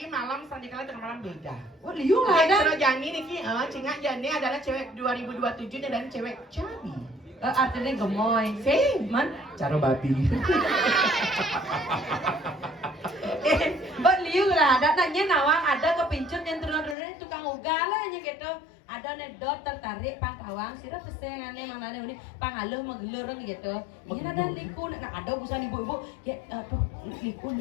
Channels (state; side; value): drops out; right; at 16.9 s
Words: malam, sandikala dengan malam beda. Oh liu lah Yang ada. Sero Jani Niki, Cingak Jani adalah cewek 2027 dan cewek cabi. Artinya gemoy. Sing, Man. caro babi. Oh liu lah ada. Nanya nawang ada kepincut yang turun-turun tukang ugal lah nya gitu. Ada nedot tertarik pangkawang sira pesengane manane ini pangaluh magelureng gitu. Ini ada liku nah ada busan ibu-ibu ya aduh liku